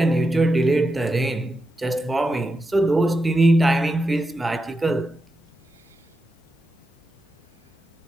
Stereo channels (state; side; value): normal; both; correlation 0.88